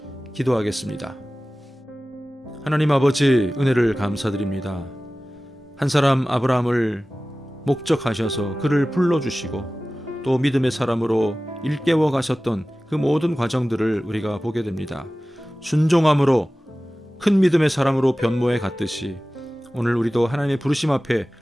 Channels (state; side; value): normal; both; correlation 0.97